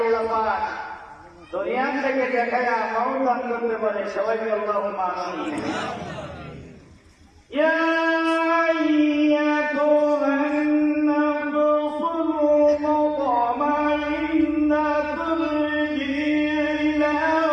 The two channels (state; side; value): identical; both; correlation 1.00